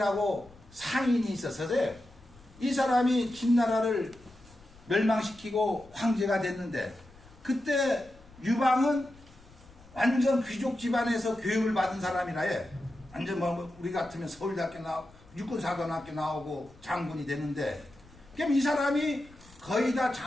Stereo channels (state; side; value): noise; left; rumble, 24 dB below the sound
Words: 상인이 있었어요. 이 사람이 진나라를 멸망시키고 황제가 됐는데, 그때 유방은 완전 귀족 집안에서 교육을 받은 사람이라, 예. 완전 뭐 우리 같으면 서울대학교 나오고 육군사관학교 나오고 장군이 되는데, 그럼 이 사람이 거의 다